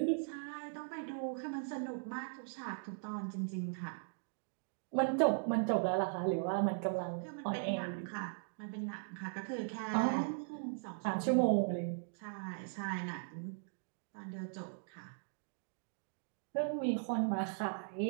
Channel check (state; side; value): silent; left; digital silence